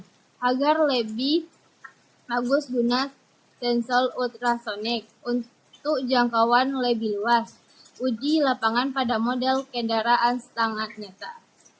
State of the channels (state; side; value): identical; both; correlation 1.00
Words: Agar lebih bagus guna sensor ultrasonik untuk jangkauan lebih luas. Uji lapangan pada model kendaraan setengah nyata.